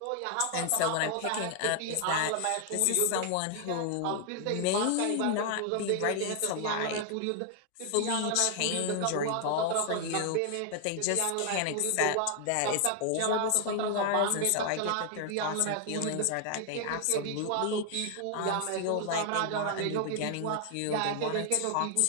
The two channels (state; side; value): different; both; correlation 0.00